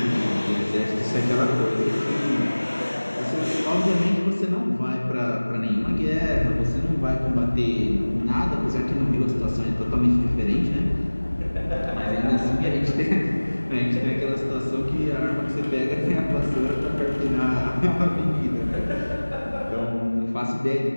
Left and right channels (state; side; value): inverted; both; correlation -1.00